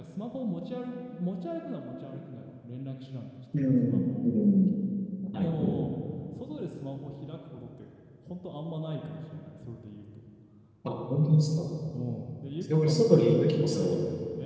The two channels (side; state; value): both; identical; correlation 1.00